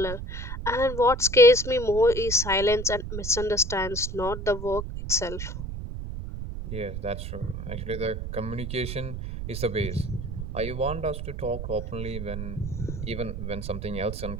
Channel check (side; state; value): right; noise; rumble, 6 dB below the sound